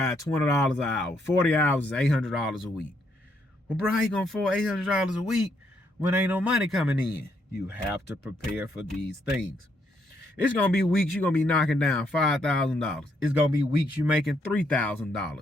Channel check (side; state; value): both; normal; correlation 0.74